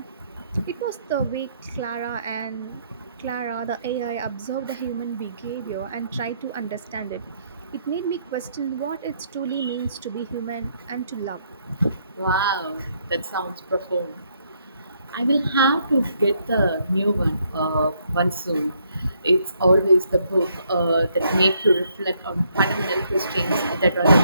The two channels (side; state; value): both; inverted; correlation -0.72